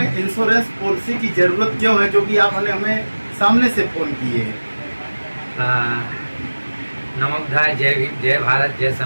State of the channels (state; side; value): inverted; both; correlation -1.00